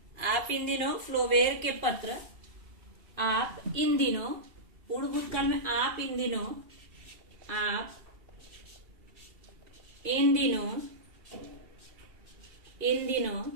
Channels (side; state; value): left; late; 2.7 ms